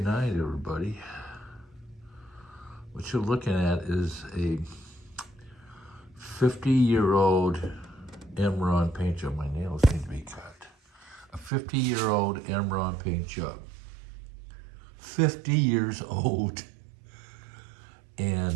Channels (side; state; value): left; drops out; at 11.5 s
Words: everybody. What you're looking at is a 50-year-old Imron paint job. My nails need to be cut. A 50-year-old Imron paint job. 50 years old.